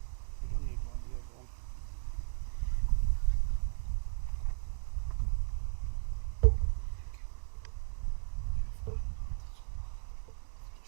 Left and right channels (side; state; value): left; silent; digital silence